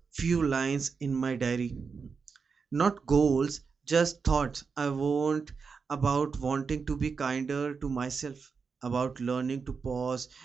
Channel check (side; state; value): left; quieter; 5.4 dB